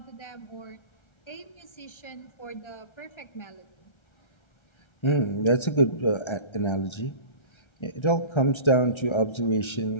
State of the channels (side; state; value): right; late; 1.3 ms